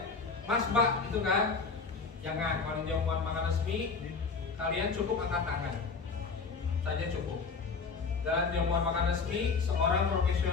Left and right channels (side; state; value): right; quieter; 4.8 dB